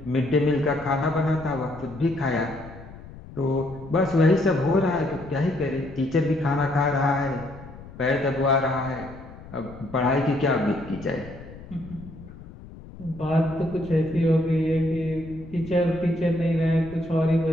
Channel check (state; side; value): noise; left; rumble, 16 dB below the sound